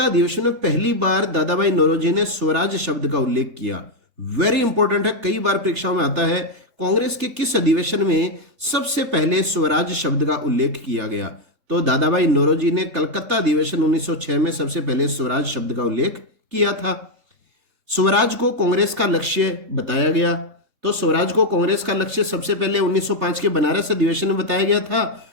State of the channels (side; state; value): left; late; 3.4 ms